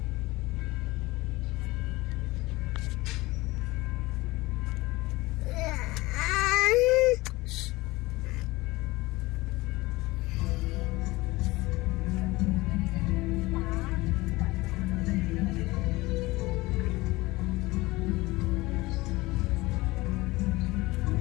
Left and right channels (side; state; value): right; quieter; 20.7 dB